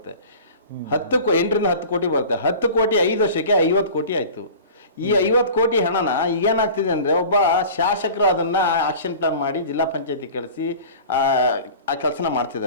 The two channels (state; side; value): inverted; both; correlation -0.40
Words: 8 ರಿಂದ 10 ಕೋಟಿ ಬರುತ್ತೆ. 10 ಕೋಟಿ 5 ವರ್ಷಕ್ಕೆ 50 ಕೋಟಿ ಆಯಿತು. ಈ 50 ಕೋಟಿ ಹಣನ ಏನಾಗ್ತಿದೆ ಅಂದರೆ, ಒಬ್ಬ ಶಾಸಕರು ಅದನ್ನು ಆಕ್ಷನ್ ಪ್ಲಾನ್ ಮಾಡಿ ಜಿಲ್ಲಾ ಪಂಚಾಯತಿ ಕಳಿಸಿ ಆ ಕೆಲಸನ